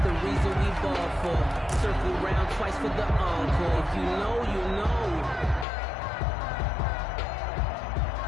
the reason we ball for. Circle round twice for the encore. If you know, you know.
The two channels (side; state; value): right; drops out; at 5.7 s